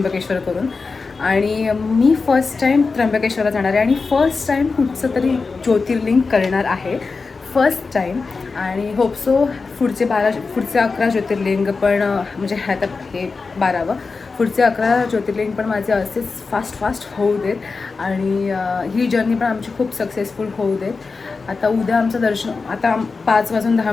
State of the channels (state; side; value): quieter; right; 4.3 dB